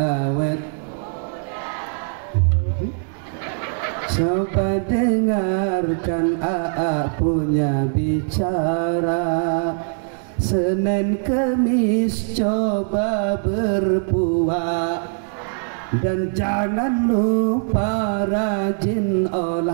coba dengarkan AA punya bicara. Senin Kemis coba berpuasa dan jangan lupa rajin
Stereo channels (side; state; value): left; silent; 65 dB below the other